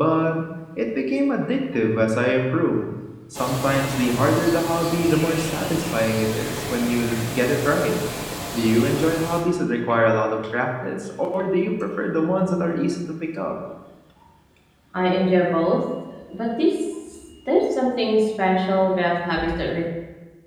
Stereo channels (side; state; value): both; identical; correlation 1.00